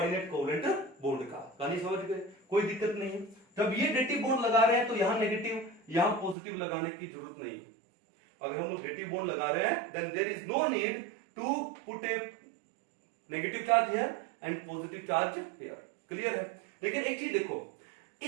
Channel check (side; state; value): left; drops out; at 6.4 s